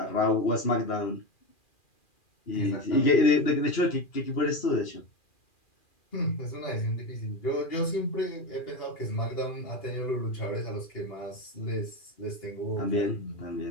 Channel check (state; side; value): late; right; 2.4 ms